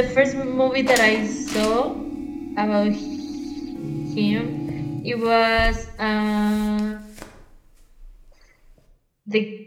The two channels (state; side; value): identical; both; correlation 1.00